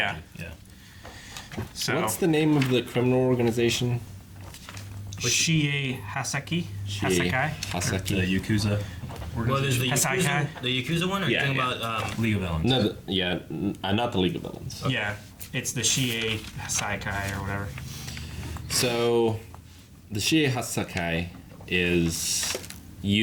so. What's the name of the criminal organization? Shie Hasaki? Hasakai? The Haseki. Yakuza. Well, there's the Hasai Yakuza, Kai? the Yakuza one, or Yeah, you're talking yeah. about League of Villains. No, not the League of Villains. Yeah, it's the Shie Hasaikai or whatever. So, the Shie Hasakai is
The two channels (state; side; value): identical; both; correlation 1.00